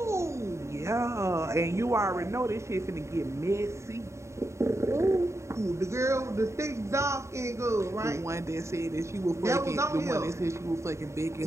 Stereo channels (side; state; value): left; late; 0.14 ms